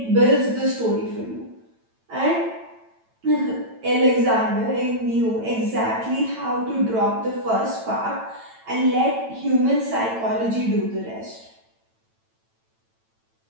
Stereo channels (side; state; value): left; late; 9.0 ms